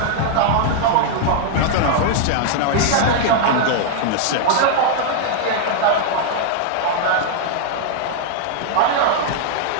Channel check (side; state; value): both; different; correlation -0.01